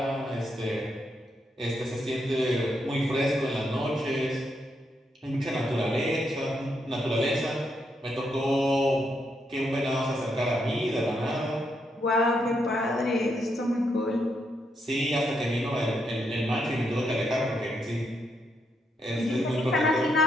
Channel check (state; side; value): normal; both; correlation 0.79